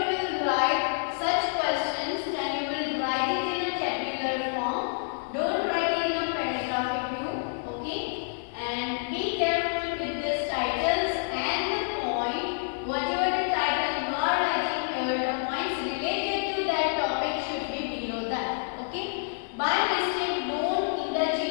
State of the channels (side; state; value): right; silent; digital silence